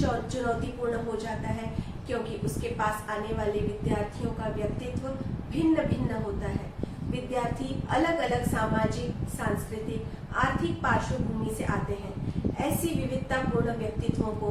हो जाता है क्योंकि उसके पास आने वाले विद्यार्थियों का व्यक्तित्व भिन्न भिन्न होता है। विद्यार्थी अलग अलग सामाजिक, सांस्कृतिक, आर्थिक पार्श्वभूमि से आते हैं। ऐसी विविधतापूर्ण व्यक्तित्वों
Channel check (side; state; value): both; identical; correlation 1.00